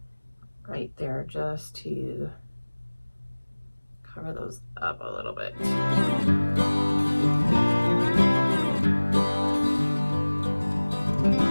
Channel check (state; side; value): inverted; both; correlation -1.00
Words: right there just to cover those up a little bit. I